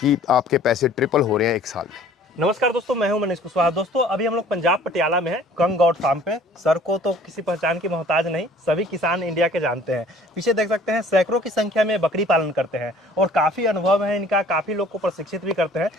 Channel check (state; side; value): normal; both; correlation 0.52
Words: आपके पैसे ट्रिपल हो रहे हैं 1 साल में। नमस्कार दोस्तों, मैं हूं मनीष कुशवाहा। दोस्तों अभी हम लोग पंजाब पटियाला में हैं, कंग गॉड फार्म पे। सर को तो किसी पहचान की मोहताज नहीं, सभी किसान इंडिया के जानते हैं। पीछे देख सकते हैं सैकड़ों की संख्या में बकरी पालन करते हैं और काफ़ी अनुभव है इनका, काफ़ी लोग को प्रशिक्षित भी करते हैं।